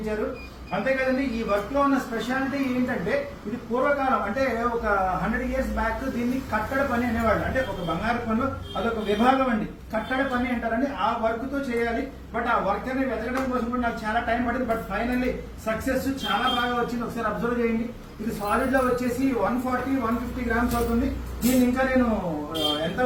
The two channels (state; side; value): identical; both; correlation 1.00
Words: అంతే కదండి, ఈ వర్క్ లో ఉన్న స్పెషాలిటీ ఏంటంటే ఇది పూర్వకాలం అంటే ఒక 100 years బ్యాక్ దీన్ని కట్టడ పని అనేవాళ్ళు. అంటే ఒక బంగారు పనిలో అదొక విభాగం అండి, కట్టడ పని అంటారండి. ఆ వర్క్ తో చేయాలి. బట్ ఆ వర్క్ అనేది వెతకడం కోసం కూడా నాకు చాలా టైం పడింది. బట్ ఫైనల్లీ సక్సెస్ చాలా బాగా వచ్చింది. ఒకసారి అబ్జర్వ్ చేయండి. ఇది సాలిడ్ లో వచ్చేసి 140-150 grams అవుతుంది. దీన్ని ఇంకా నేను ఎంత